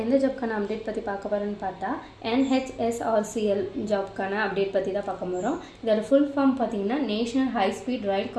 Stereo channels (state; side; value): identical; both; correlation 1.00